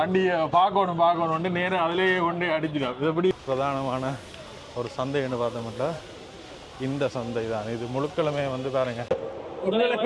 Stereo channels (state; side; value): identical; both; correlation 1.00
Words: பார்க்கணும் நேரம் அதிலேயே கொண்டு அடிச்சிடும். இது எப்படி பிரதானமான ஒரு சந்தைன்னு பார்த்தோம்னா இந்த சந்தை தான். இது முழுக்களுமே வந்து பாருங்க.